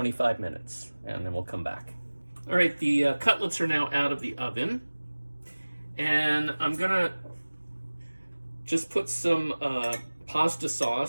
minutes, and then we'll come back. All right, the cutlets are now out of the oven, and I'm going to just put some pasta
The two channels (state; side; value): inverted; both; correlation -1.00